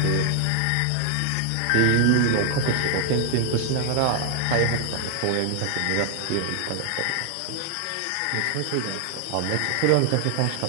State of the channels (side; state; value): both; different; correlation 0.00